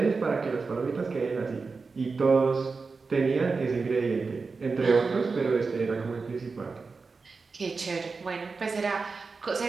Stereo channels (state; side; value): quieter; left; 4.4 dB